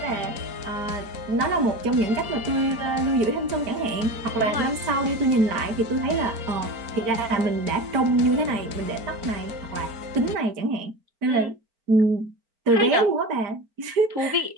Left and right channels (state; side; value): late; left; 4.4 ms